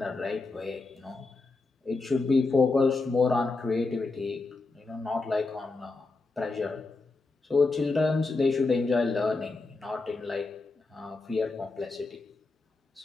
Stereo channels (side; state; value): right; quieter; 3.6 dB